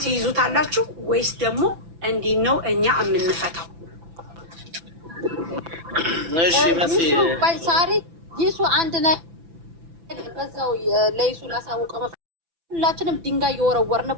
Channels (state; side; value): late; left; 6.0 ms